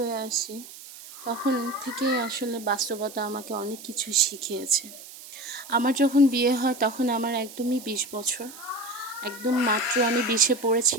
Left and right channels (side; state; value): right; noise; hiss, 16 dB below the sound